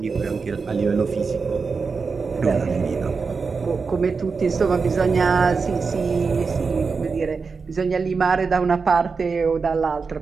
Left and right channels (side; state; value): left; quieter; 4.9 dB